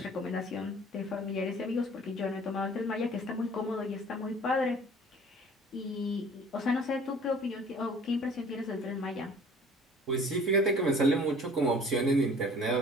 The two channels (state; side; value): normal; both; correlation 0.50